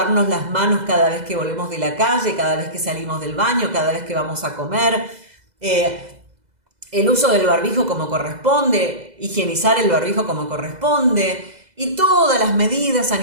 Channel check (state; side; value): late; left; 2.0 ms